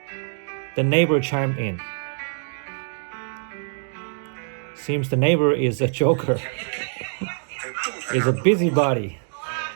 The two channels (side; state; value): left; silent; 57 dB below the other